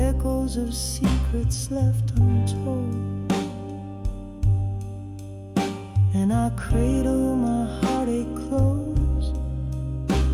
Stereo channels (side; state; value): both; identical; correlation 1.00